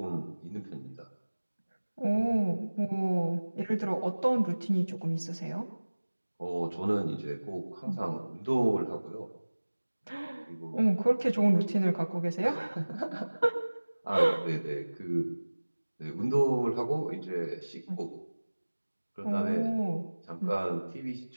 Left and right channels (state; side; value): inverted; both; correlation -1.00